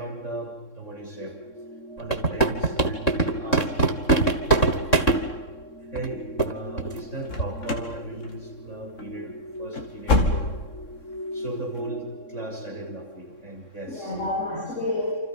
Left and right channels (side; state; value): right; late; 3.6 ms